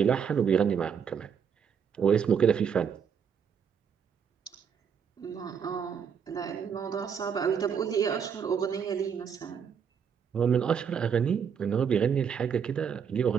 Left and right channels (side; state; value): left; quieter; 7.2 dB